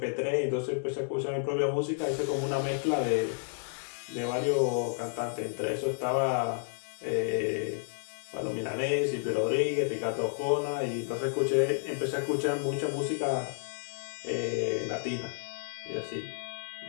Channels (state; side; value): silent; right; digital silence